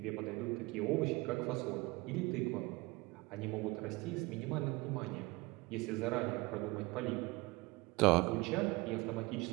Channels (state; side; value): quieter; left; 23.4 dB